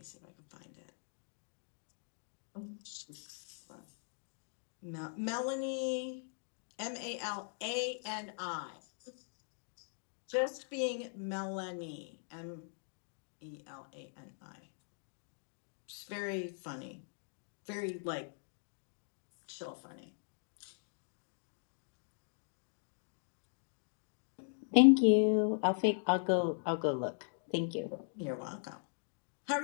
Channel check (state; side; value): silent; right; digital silence